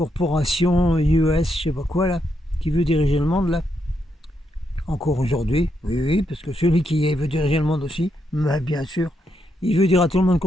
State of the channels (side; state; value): both; normal; correlation 0.80